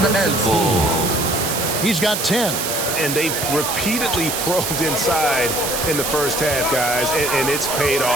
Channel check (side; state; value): right; noise; hiss, 2 dB below the sound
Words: the elbow. He's got 10. And they've repeatedly probed inside in the first half, guys, and it's paid